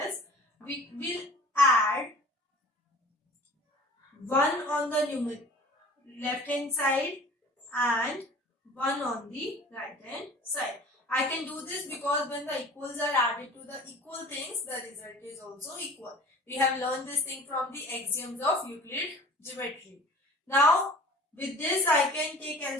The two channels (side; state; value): both; normal; correlation 0.45